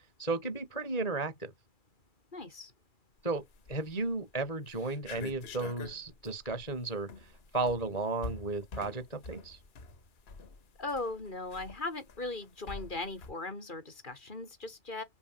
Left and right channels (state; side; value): late; right; 2.4 ms